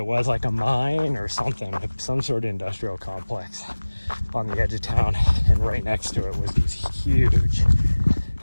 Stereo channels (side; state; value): both; inverted; correlation -1.00